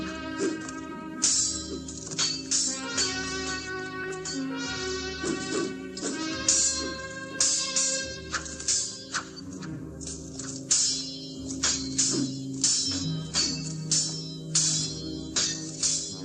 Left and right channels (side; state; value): both; identical; correlation 1.00